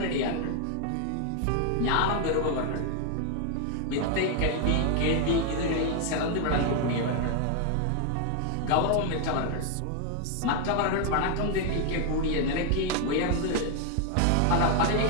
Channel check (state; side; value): different; both; correlation 0.00